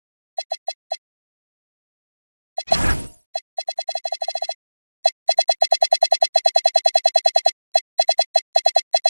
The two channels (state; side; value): inverted; both; correlation -1.00